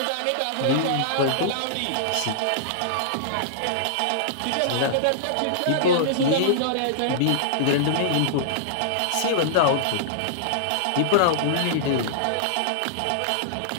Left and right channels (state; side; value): different; both; correlation -0.01